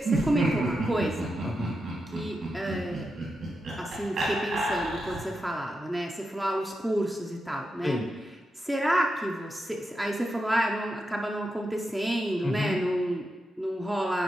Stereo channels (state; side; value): normal; both; correlation 0.87